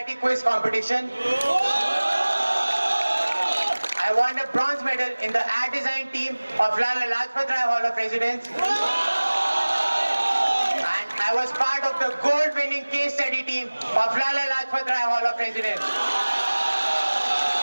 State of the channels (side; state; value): both; inverted; correlation -1.00